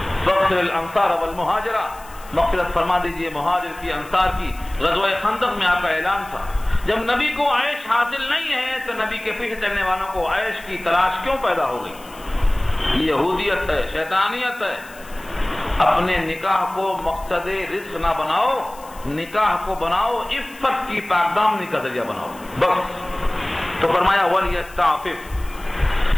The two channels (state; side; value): noise; left; hiss, 22 dB below the sound